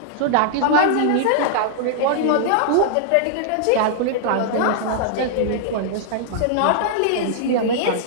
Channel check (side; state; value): both; different; correlation -0.01